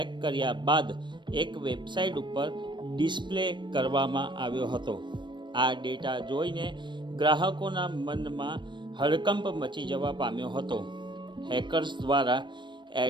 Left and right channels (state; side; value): late; left; 0.22 ms